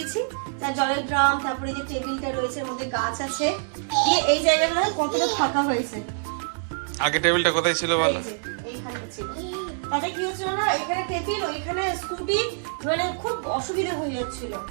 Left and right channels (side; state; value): left; silent; digital silence